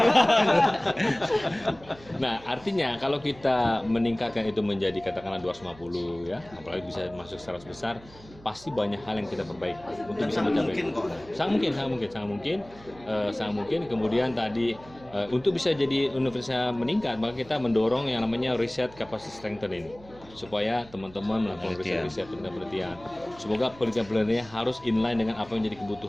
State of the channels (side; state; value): right; noise; hum, 22 dB below the sound